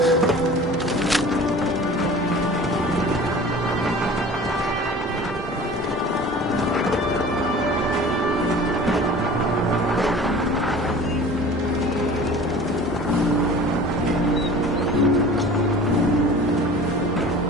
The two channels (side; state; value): both; normal; correlation 0.42